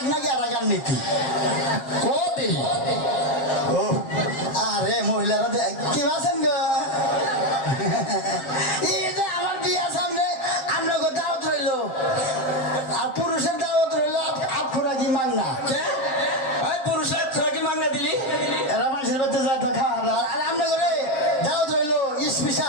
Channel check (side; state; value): right; late; 7.6 ms